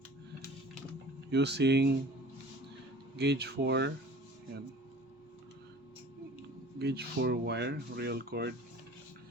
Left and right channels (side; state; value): both; normal; correlation 0.45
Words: using gauge 4 yan, gauge 4 wire real cord